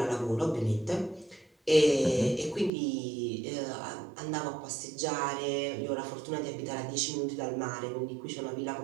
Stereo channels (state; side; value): drops out; left; at 2.7 s